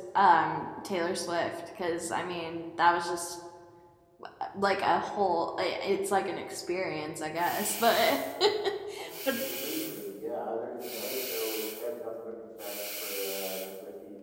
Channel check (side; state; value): both; identical; correlation 1.00